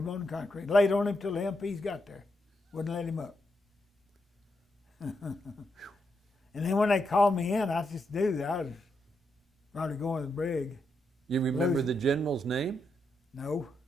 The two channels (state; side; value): normal; both; correlation 0.82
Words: on the concrete. Laid on him till the MPs got there. Wouldn't let him up. And then when they called me in, I just knew that I was probably going to the brig. You remember the general's name? No.